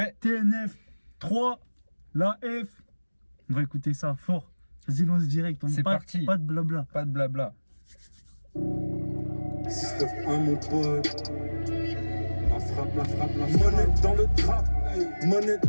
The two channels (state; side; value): inverted; both; correlation -1.00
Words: TNF 3, la F. On va écouter ça fort. Vas-y, lance direct. C'est parti. Pas de blabla. Pas de blabla. Système 1 mon pote. La frappe, la frappe, la frappe. Monnaie dans le trap, monnaie